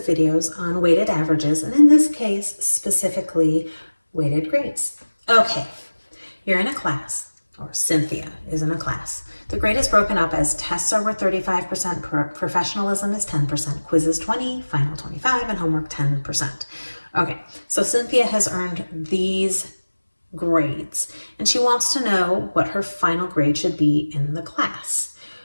videos on weighted averages, and in this case, specifically weighted grades. Okay, you're in a class, or Cynthia is in a class. The grade is broken up as tests are worth 35%, professionalism is 10%, quizzes 20, final 25, and homework 10%. Okay, so Cynthia has earned these grades, and she wants to know what her final grade should be in the class.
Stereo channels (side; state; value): both; inverted; correlation -1.00